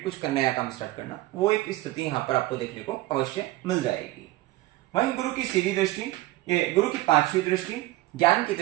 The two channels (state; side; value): quieter; left; 17.8 dB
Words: कुछ नया काम स्टार्ट करना, वो एक स्थिति यहाँ पर आपको देखने को अवश्य मिल जाएगी। वहीं गुरु की सीधी दृष्टि, गुरु की 5वीं दृष्टि, ज्ञान की